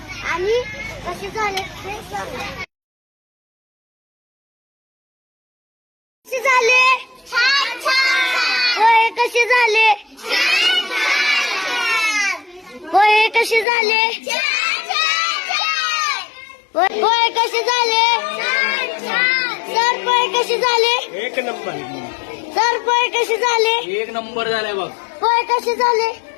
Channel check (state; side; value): drops out; right; at 13.7 s